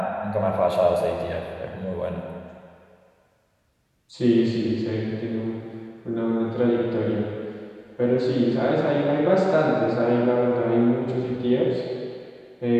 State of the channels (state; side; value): identical; both; correlation 1.00